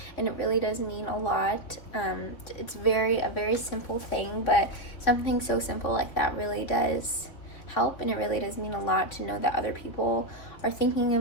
it really does mean a lot. It's a very simple thing, but something so simple like that really does help, and it really does mean a lot to know that other people are thinking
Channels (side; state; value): right; late; 3.4 ms